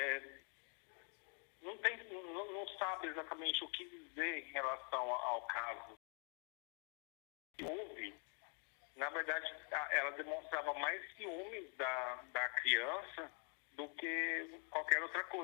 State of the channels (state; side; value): quieter; right; 39.6 dB